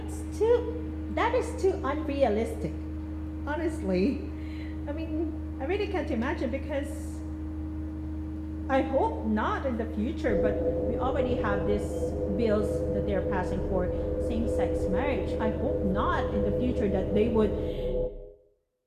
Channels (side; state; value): both; identical; correlation 1.00